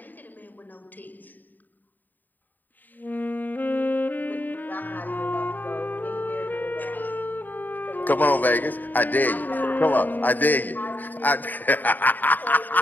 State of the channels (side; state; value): right; late; 0.087 ms